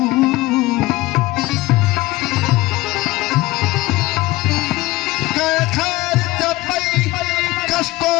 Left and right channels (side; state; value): right; quieter; 19.3 dB